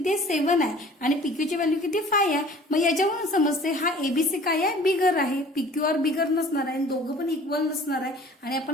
आहे? 7 आहे आणि पीक्यूची व्हॅल्यू किती? 5 आहे. मग याच्यावरून समजते हा एबीसी काय आहे? बिगर आहे. पीक्यूआर बिगर नसणार आहे, दोघं पण इक्वल नसणार आहे आणि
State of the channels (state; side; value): normal; both; correlation 0.48